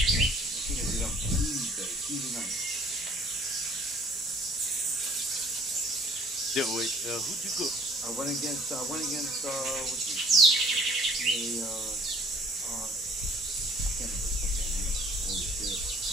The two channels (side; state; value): both; normal; correlation 0.55